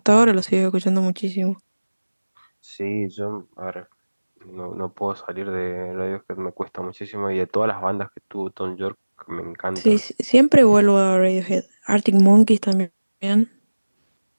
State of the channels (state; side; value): inverted; both; correlation -1.00